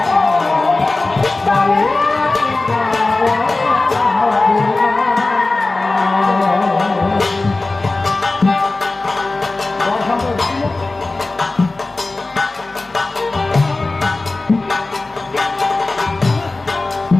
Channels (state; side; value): quieter; right; 3.3 dB